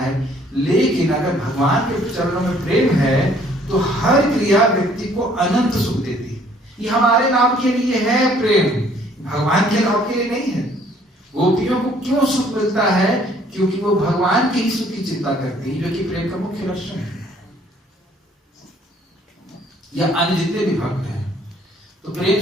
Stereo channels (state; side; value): normal; both; correlation 0.60